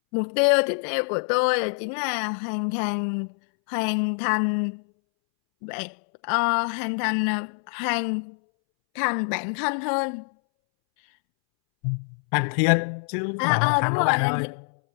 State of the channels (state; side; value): silent; right; 62 dB below the other